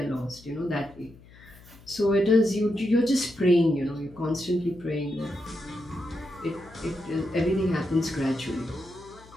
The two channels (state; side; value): noise; left; hum, 22 dB below the sound